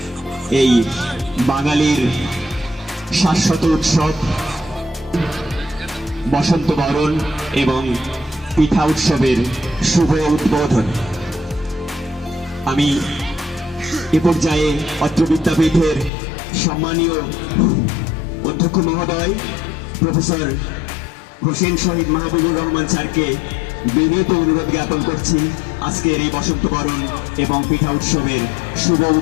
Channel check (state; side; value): drops out; right; at 16.1 s